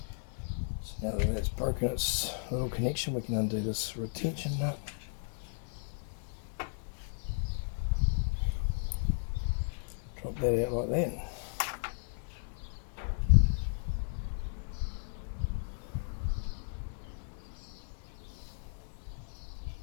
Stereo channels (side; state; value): right; silent; digital silence